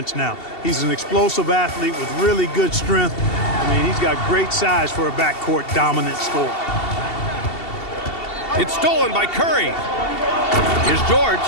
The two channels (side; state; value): right; late; 2.7 ms